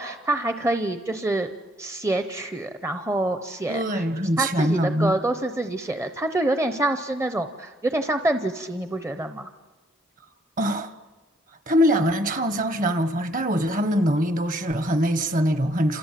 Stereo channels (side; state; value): both; normal; correlation 0.69